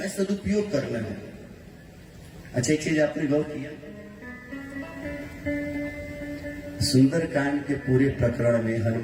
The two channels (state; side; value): identical; both; correlation 1.00